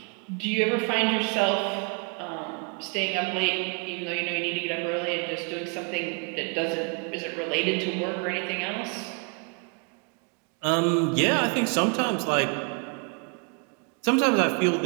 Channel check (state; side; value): quieter; left; 35.8 dB